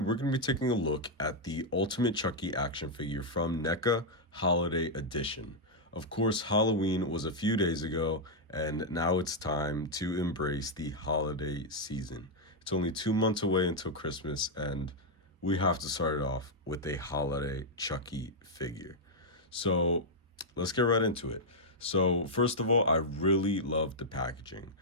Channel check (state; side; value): normal; both; correlation -0.03